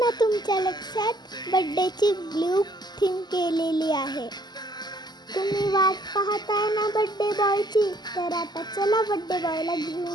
तुमच्या लक्षात? बर्थडेची ब्लू थीम केलेली आहे. तुम्ही वाट पाहताय ना बर्थडे बॉयची? तर आता चला बर्थडे बॉयला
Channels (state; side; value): late; right; 0.21 ms